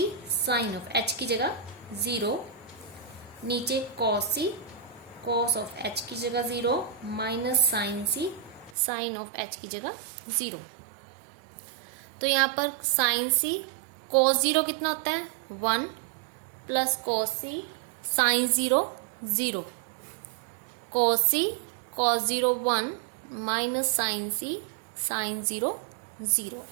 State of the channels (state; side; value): drops out; left; at 8.8 s